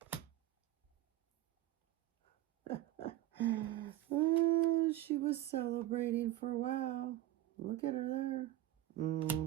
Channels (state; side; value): quieter; left; 14.4 dB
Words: Oh, she was celebrating for a while. Look at her there.